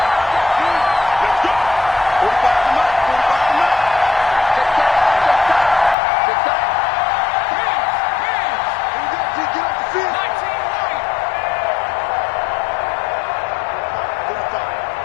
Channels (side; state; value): right; drops out; at 6.0 s